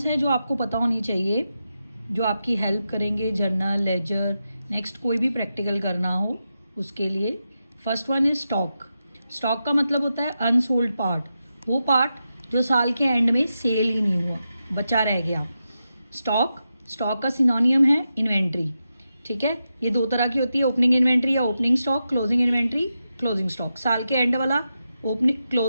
हैं जो आपको पता होनी चाहिए, जो आपकी हेल्प करेंगे जर्नल, लेजर, नेक्स्ट कोई भी प्रैक्टिकल करना हो उसके लिए. First one is stock. Stock का मतलब होता है अनसोल्ड पार्ट, वो पार्ट जो साल के एंड में सेल ही नहीं हुआ, बचा रह गया. स्टॉक का सिनोनियम है इन्वेंट्री. ठीक है, ये दो तरह की होती है, ओपनिंग इन्वेंट्री या opening stock, closing inventory, closing stock. साल के एंड वाला ओपनिंग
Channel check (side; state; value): both; inverted; correlation -0.89